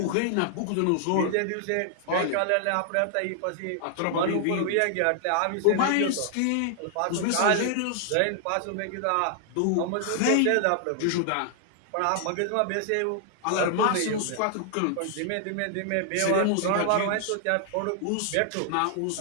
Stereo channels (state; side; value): different; both; correlation 0.00